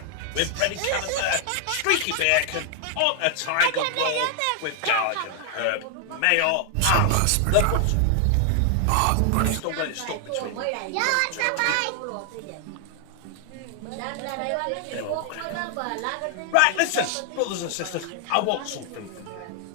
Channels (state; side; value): different; both; correlation 0.00